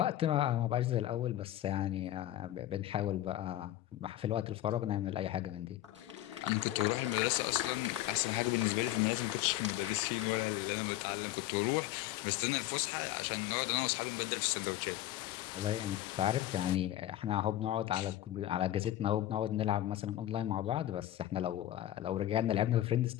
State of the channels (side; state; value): right; quieter; 13.7 dB